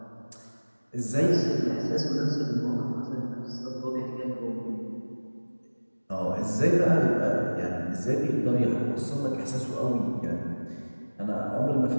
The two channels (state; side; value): inverted; both; correlation -1.00